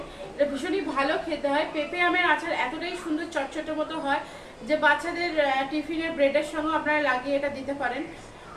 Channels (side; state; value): both; identical; correlation 1.00